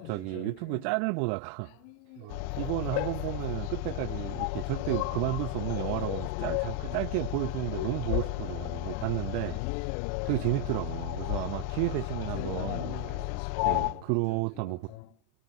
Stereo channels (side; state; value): both; different; correlation 0.00